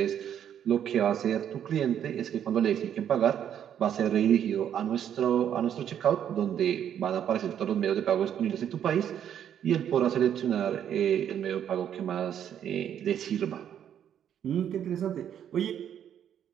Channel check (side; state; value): left; quieter; 9.5 dB